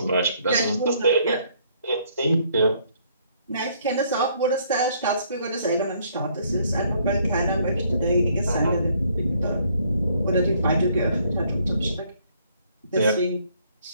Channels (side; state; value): both; inverted; correlation -0.66